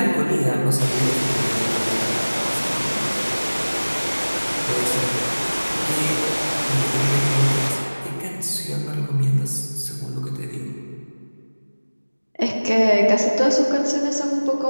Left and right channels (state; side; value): inverted; both; correlation -1.00